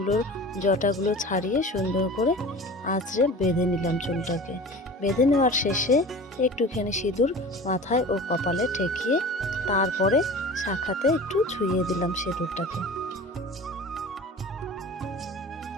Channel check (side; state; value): both; normal; correlation 0.37